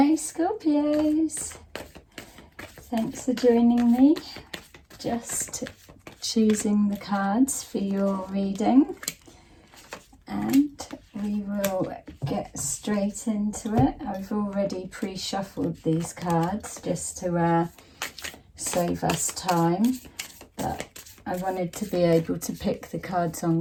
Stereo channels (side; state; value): both; identical; correlation 1.00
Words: Scorpios, thanks for joining me. Just choosing the cards for your reading, and we will get straight into it. I've already pre-shuffled these cards just to save us time, but I wanted to be able to pick the cards